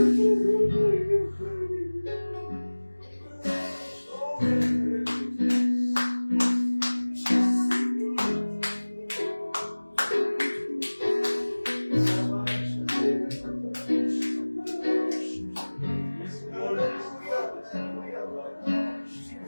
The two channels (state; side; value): inverted; both; correlation -1.00